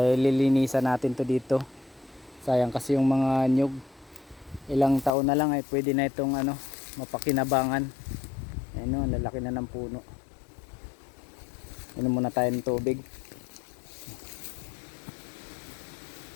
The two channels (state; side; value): drops out; right; at 5.1 s